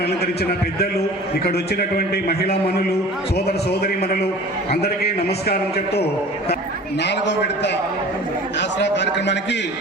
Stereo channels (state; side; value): normal; both; correlation 0.42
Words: అలంకరించిన పెద్దలు, ఇక్కడ వచ్చినటువంటి మహిళా మనులు, సోదర సోదరి మనులు అందరికీ నమస్కారం చెప్తూ 4వ విడత ఆసరా కార్యక్రమానికి